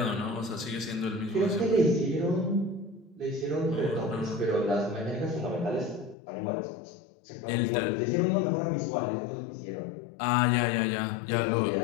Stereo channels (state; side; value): drops out; right; at 6.2 s